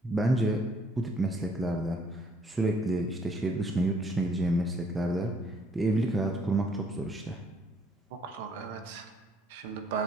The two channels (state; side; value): normal; both; correlation 0.65